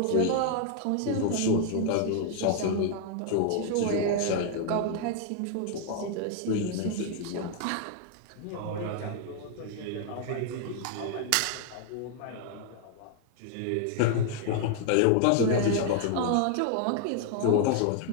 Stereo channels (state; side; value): different; both; correlation 0.00